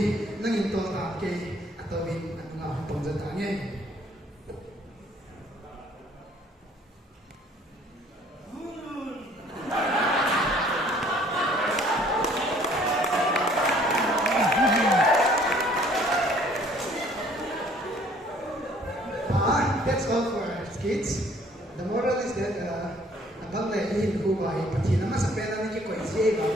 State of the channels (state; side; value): normal; both; correlation 0.58